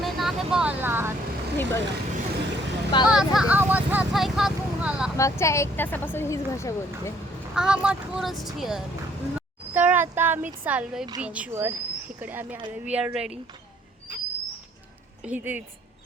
बोलणार. ही बघा माझा आवाज ह्याचा आहे का तुम्हाला? मागच्या 1 तासापासून हीच भाषा बोलते. I'm a tourist here. तर आता आम्ही चाललोय बीचवर. इकडे आम्ही आलोय, वी आर रेडी. इथेच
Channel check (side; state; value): both; normal; correlation 0.63